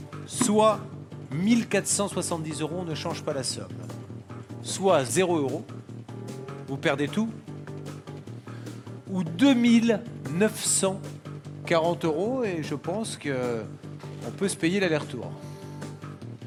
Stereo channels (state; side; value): identical; both; correlation 1.00